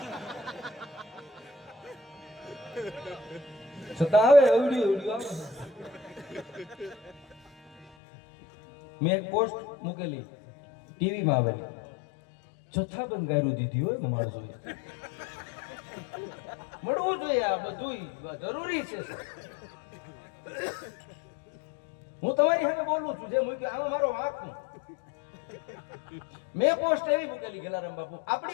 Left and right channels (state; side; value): drops out; right; at 7.9 s